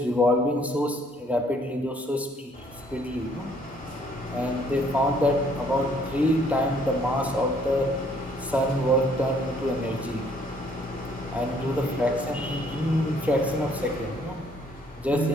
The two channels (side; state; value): both; normal; correlation 0.63